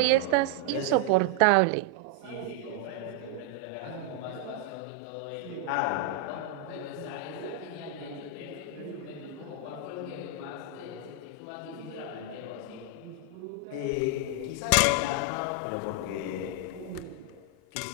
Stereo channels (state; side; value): different; both; correlation 0.00